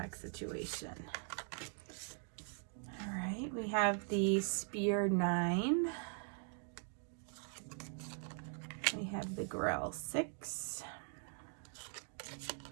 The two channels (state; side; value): silent; left; 50 dB below the other